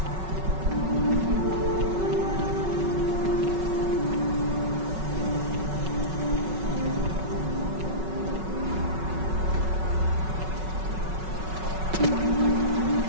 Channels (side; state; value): left; late; 5.4 ms